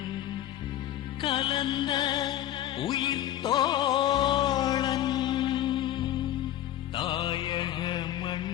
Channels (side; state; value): right; quieter; 12.5 dB